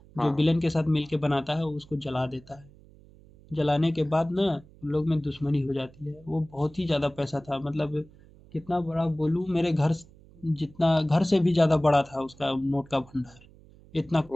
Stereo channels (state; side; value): noise; right; hum, 24 dB below the sound